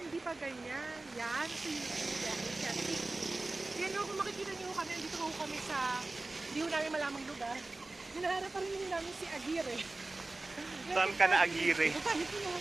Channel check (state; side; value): quieter; left; 3.1 dB